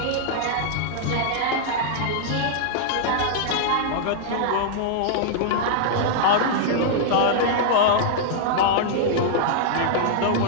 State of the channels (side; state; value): both; different; correlation -0.01